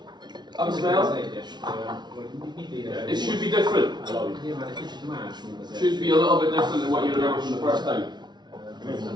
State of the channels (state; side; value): late; left; 0.20 ms